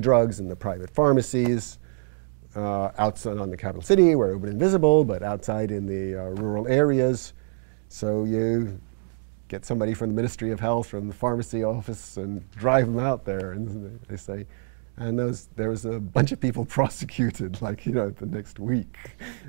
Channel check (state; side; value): silent; left; digital silence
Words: in the private pharmacies outside on the capital city where it would be invisible, but outside in the rural areas. So you get somebody from the Ministry of Health, from the pharmacy office, and drive them out there, and they say, and there was a bunch of people prosecuted, like, you know, the next week.